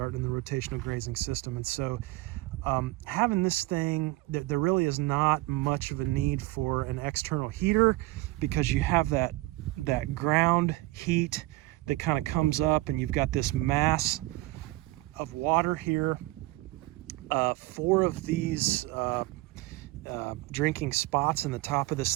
the rotational grazing system. And so having this thing, there really is not much of a need for an external heater, because you have that ground heat that kind of comes up, and you've got this mass of water here. 4 of these drinking spots in the top of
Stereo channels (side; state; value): left; quieter; 20.0 dB